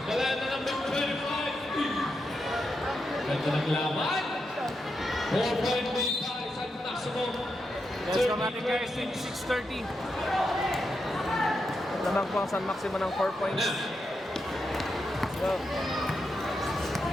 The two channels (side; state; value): both; normal; correlation 0.85